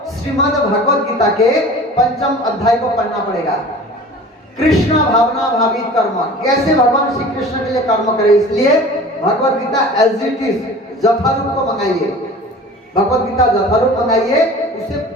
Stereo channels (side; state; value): both; normal; correlation 0.41